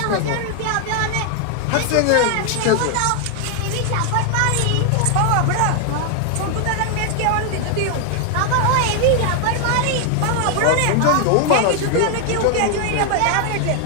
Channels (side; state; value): both; different; correlation 0.00